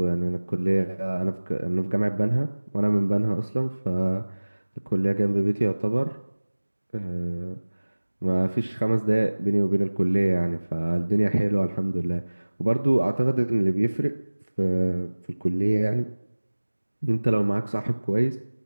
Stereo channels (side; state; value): both; inverted; correlation -1.00